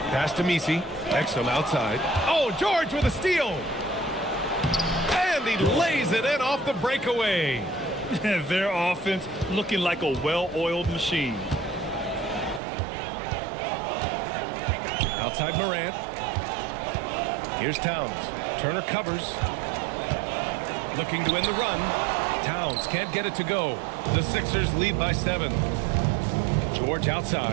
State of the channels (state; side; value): drops out; left; at 12.6 s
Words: Pass to Messi. Exum outside. Oh, George with a steal. And he lays it in off the breakaway. Their offense looking like a well-oiled machine. Outside Morant. Here's Towns. Turner covers. Looking to end the run. Towns can't get it to go. The Sixers lead by 7. George